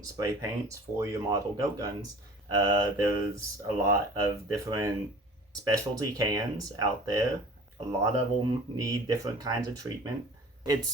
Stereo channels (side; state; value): both; normal; correlation 0.44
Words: spray paints for your model GoatGuns. There's a lot of different specialty cans out there. A lot of them need different kinds of treatment.